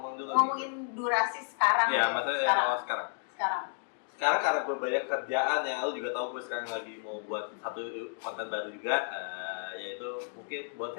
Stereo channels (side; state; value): right; silent; 56 dB below the other